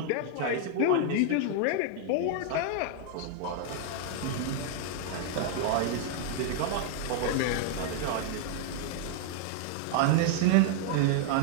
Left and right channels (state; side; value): different; both; correlation 0.00